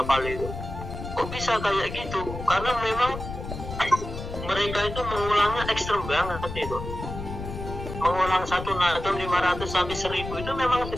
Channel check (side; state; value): left; noise; rumble, 8 dB below the sound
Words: itu. Kok bisa kayak gitu? Karena memang mereka itu mengulangnya ekstrem banget itu. Mengulang satu nadam 500 sampai 1000 itu memang